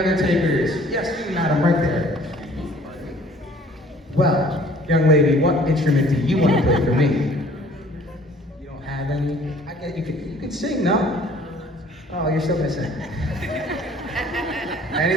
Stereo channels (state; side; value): normal; both; correlation 0.54